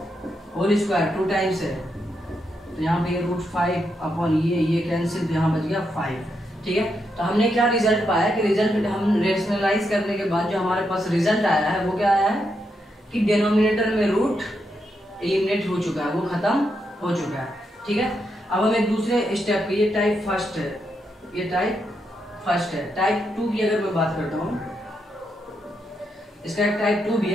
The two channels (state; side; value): normal; both; correlation 0.82